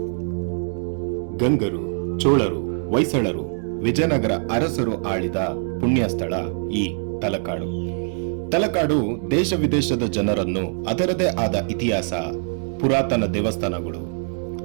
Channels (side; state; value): left; silent; 63 dB below the other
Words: ಗಂಗರು, ಚೋಳರು, ಹೊಯ್ಸಳರು, ವಿಜಯನಗರ ಅರಸರು ಆಳಿದ ಪುಣ್ಯ ಸ್ಥಳ ಈ ತಲಕಾಡು. ತಲಕಾಡು ದೇಶ ವಿದೇಶದ ಜನರನ್ನು ಅದರದೇ ಆದ ಇತಿಹಾಸ, ಪುರಾತನ ದೇವಸ್ಥಾನಗಳು,